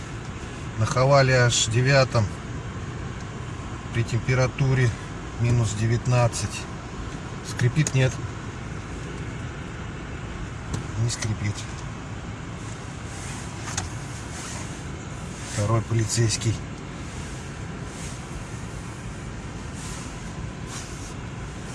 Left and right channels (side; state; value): both; identical; correlation 1.00